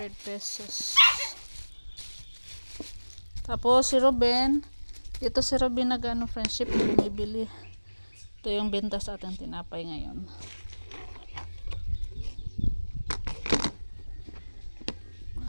100 pesos. Tapos si Ruben, ito si Ruben friendship bumibili. Ito yung benta sa ating tinapay ngayon.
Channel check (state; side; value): inverted; both; correlation -1.00